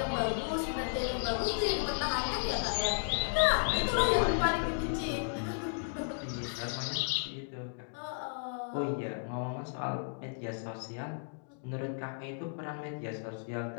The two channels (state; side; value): silent; right; digital silence